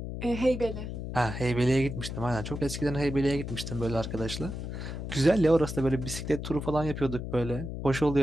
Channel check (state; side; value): noise; left; hum, 6 dB below the sound